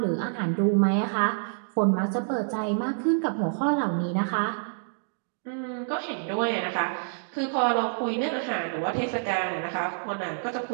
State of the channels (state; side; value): silent; left; digital silence